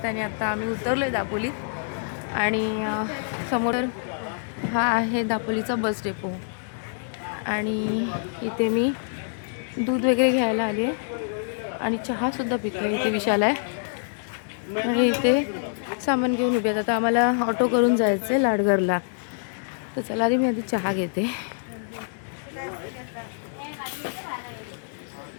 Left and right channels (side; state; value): right; silent; digital silence